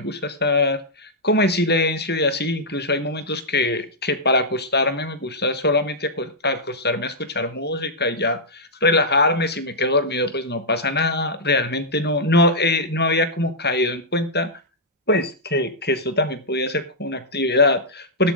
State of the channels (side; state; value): both; normal; correlation -0.09